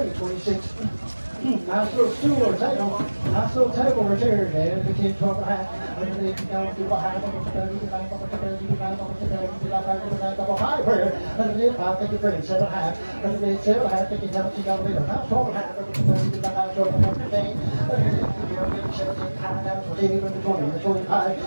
Nice little stool or table. Nice little table right there, man. 15, 12 and a half. Thank you, friend. 7 and a half. 7 and a half. Thank you, $12 and a half. 12 and a half.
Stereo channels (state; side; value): inverted; both; correlation -1.00